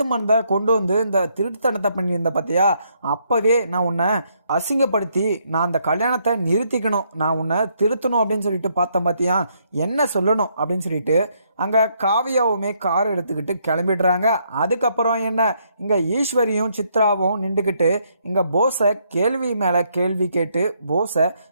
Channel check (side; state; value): both; inverted; correlation -0.73